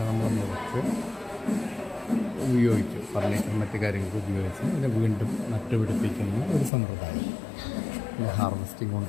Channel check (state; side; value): drops out; right; at 6.7 s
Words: നമ്മൾ മുറിച്ച് ഉപയോഗിക്കും, ഫർണിച്ചർ മറ്റ് കാര്യങ്ങൾക്ക് ഉപയോഗിച്ച് അതിനെ വീണ്ടും നട്ടുപിടിപ്പിക്കുന്ന ഒരു സമ്പ്രദായം. പിന്നെ ഹാർവെസ്റ്റിംഗ്